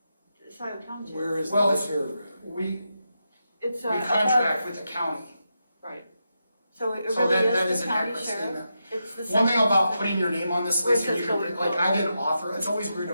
Scio Township. Where is Well, that paragraph? We It's, contract with the county. Right. So it So really that is is the an county accurate sheriff? statement. It's the One thing second- about putting your name on this Where it list, and you says can, going like, forward. I didn't author, it's always weird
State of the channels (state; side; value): inverted; both; correlation -0.87